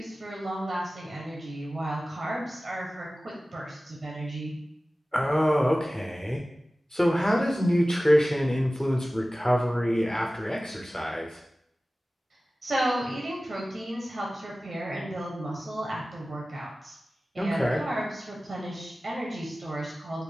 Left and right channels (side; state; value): both; normal; correlation 0.97